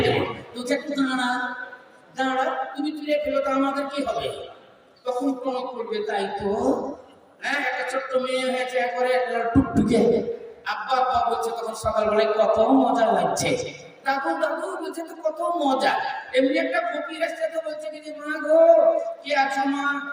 দেবো, তুই একটু দাঁড়া দাঁড়া, তুমি চুরিয়ে ফেলো তো আমাদের কি হবে? তখন প্রণব করবে, তাই তো হ্যাঁ, একটা ছোট্ট মেয়ে হয়েছে একবারে টুকটুকে, আব্বা আব্বা বলছে, তখন সকালবেলায় কত মজা লাগছে, দাদু দাদু বলছে তো কত মজা। এমনি একটা ফকির আসছে তো বলছে কি যে মা গো কি আছো মা,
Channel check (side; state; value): both; identical; correlation 1.00